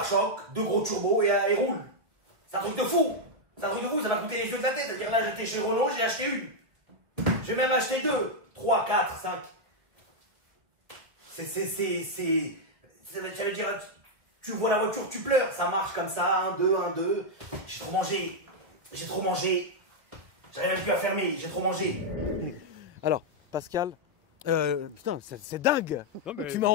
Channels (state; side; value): late; left; 1.3 ms